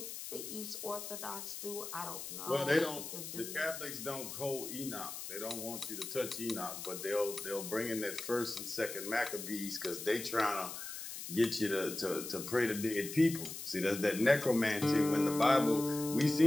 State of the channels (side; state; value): left; noise; hiss, 8 dB below the sound